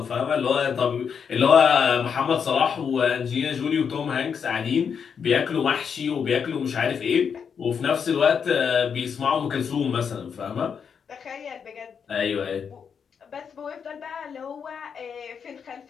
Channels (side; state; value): right; quieter; 6.8 dB